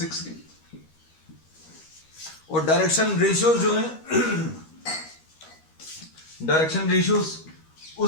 6k। और डायरेक्शन रेशियोज जो है, डायरेक्शन रेशियोज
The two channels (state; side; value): late; right; 13 ms